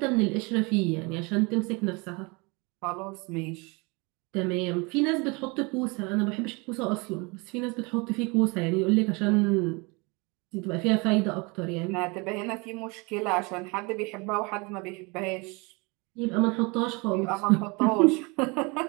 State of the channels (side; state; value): left; quieter; 28.4 dB